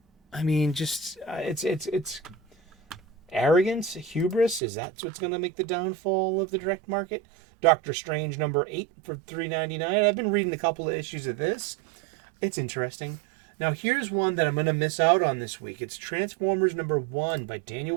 I mean, just it's arrogance, hubris. Is that what's going to make the downfall of the direct market? Doctor Strange #8 for $3.99. I've been reading a couple of issues of this. It's interesting. Now here's one that I'm going to miss out on this week. It's Transformers #1 by Daniel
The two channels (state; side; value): drops out; left; at 4.6 s